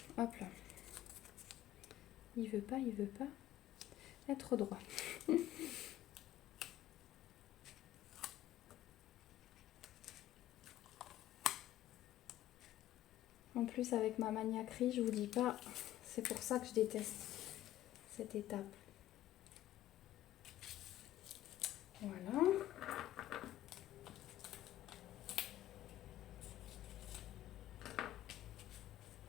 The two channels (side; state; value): right; quieter; 13.9 dB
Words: Hop là. Il veut pas être droit. En plus, avec ma maniaquerie, je vous dis pas, c'est pour ça que je déteste cette étape. Voilà.